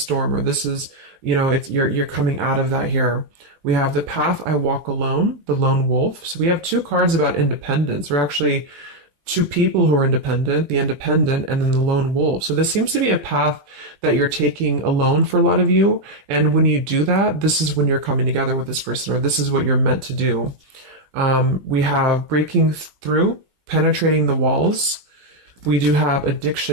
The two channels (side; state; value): left; late; 20 ms